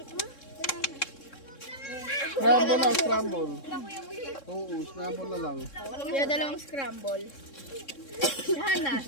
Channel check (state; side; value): late; right; 3.7 ms